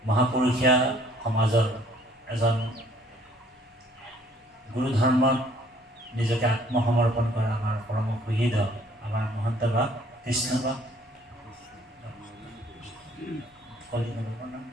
মহাপুৰুষীয়া সমাজৰ এজন গুৰু ধৰ্মত নিজকে আত্মসমৰ্পণ কৰা আমাৰ পৰম সুহৃদ আমাৰ মহন্ত বাপ কৃষ্ণ বাপ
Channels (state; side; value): normal; both; correlation 0.59